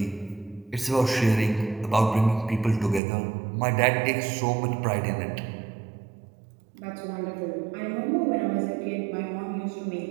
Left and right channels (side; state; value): left; drops out; at 3.0 s